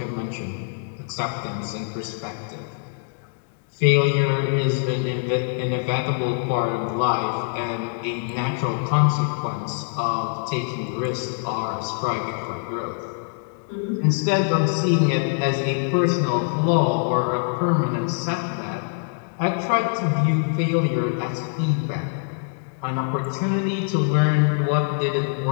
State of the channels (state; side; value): silent; right; 63 dB below the other